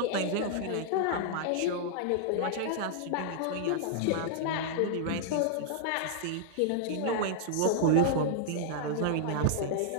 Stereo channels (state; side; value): different; both; correlation -0.01